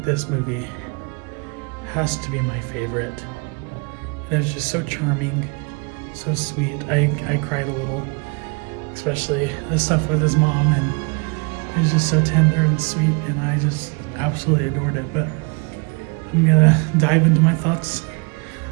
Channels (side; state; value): left; quieter; 32.3 dB